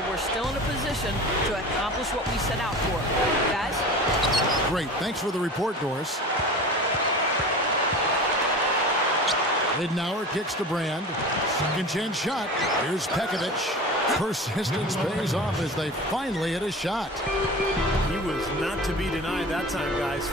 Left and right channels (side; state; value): both; normal; correlation 0.35